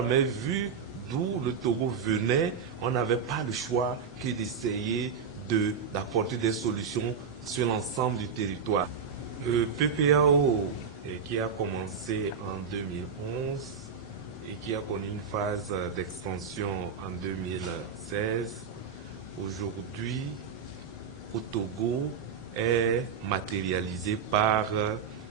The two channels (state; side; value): quieter; left; 6.2 dB